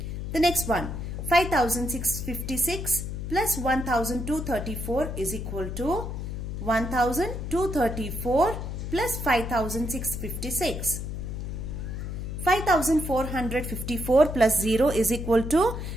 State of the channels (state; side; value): noise; left; hum, 5 dB below the sound